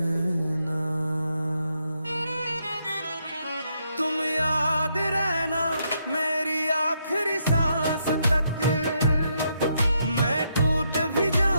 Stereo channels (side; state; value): both; inverted; correlation -0.77